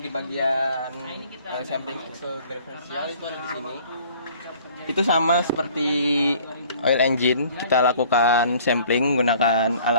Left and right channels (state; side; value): inverted; both; correlation -0.54